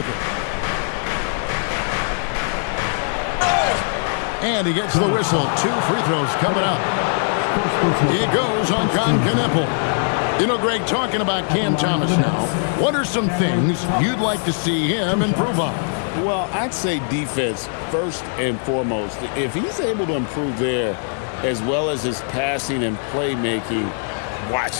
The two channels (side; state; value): right; silent; 59 dB below the other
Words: it. And he gets the whistle. 2 free throws coming up. He goes on Knipple. You know, Greg, talking about Cam Thomas now, what are some things you'd like to see him improve on? Well, I'd say defense first and foremost. If he's able to improve there as well as his passing and playmaking,